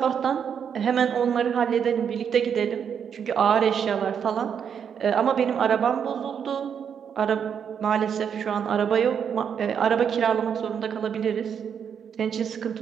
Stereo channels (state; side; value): quieter; left; 7.6 dB